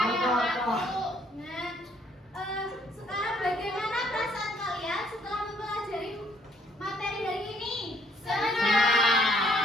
Paru. Nah, sekarang bagaimana perasaan kalian setelah mempelajari materi hari ini?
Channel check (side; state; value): both; normal; correlation 0.65